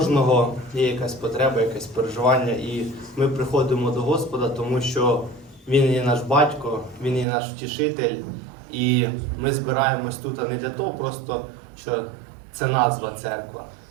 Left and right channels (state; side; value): drops out; left; at 7.2 s